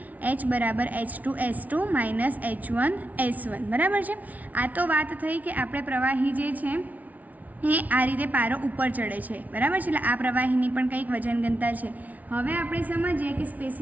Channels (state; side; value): late; left; 0.073 ms